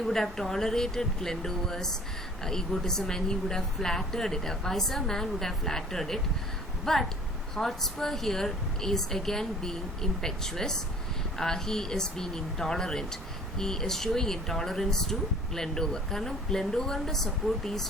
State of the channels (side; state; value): both; normal; correlation 0.51